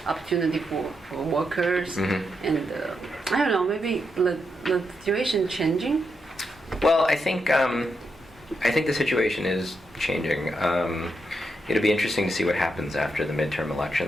opportunity for workers, and I don't know, maybe the situation changing. Well, I think the situation is changing. It'll be interesting to see what happens after the midterm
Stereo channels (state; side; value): normal; both; correlation 0.83